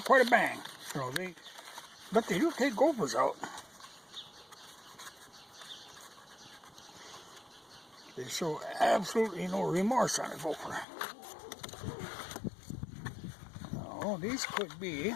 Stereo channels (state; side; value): drops out; right; at 10.9 s